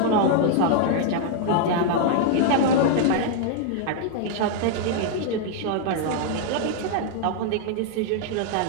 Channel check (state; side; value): different; both; correlation 0.00